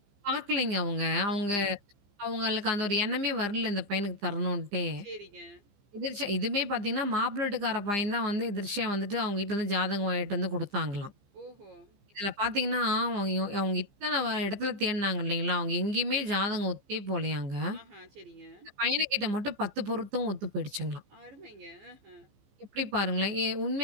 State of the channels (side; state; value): left; late; 15 ms